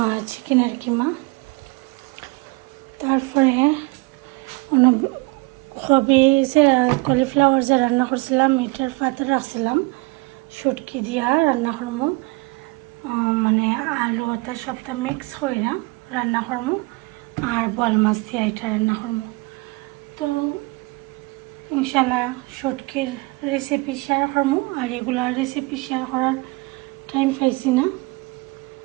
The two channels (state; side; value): quieter; left; 26.4 dB